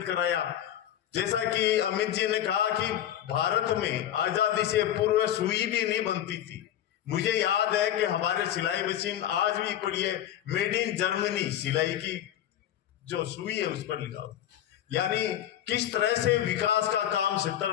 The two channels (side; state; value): right; quieter; 11.3 dB